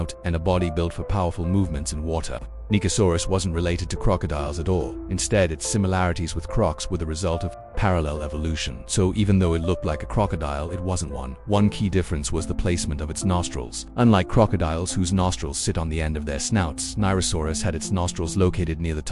and a body built for powerful movements in water, Nicosaurus wasn't related to crocodiles at all. Instead, its similarities with crocs were the result of parallel evolution. So even though it looked like a crocodile, it wasn't one. One key difference was the placement of its nostrils. Unlike crocodiles, whose nostrils sit on the end of their snouts, Nirosaurus had its nostrils located near the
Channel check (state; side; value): identical; both; correlation 1.00